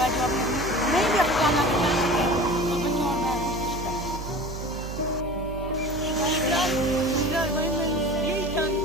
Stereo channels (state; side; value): noise; right; hum, 9 dB below the sound